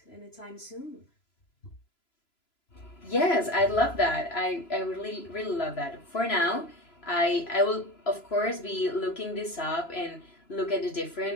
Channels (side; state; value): right; late; 3.0 ms